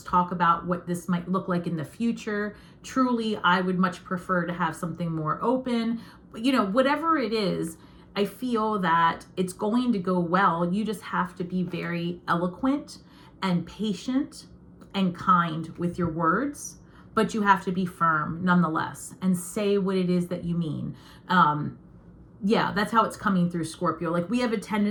talk about what this might look like in the future. Truly, I would much prefer to have something more open. You know, whatever it is, I feel that it's going to go well. You just have to be very eloquent and patient and kind with your words, but you have to be firm nonetheless and say what it is that you mean. Yeah, that's how it's coming through, Scorpio. Like, we have a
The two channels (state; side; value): identical; both; correlation 1.00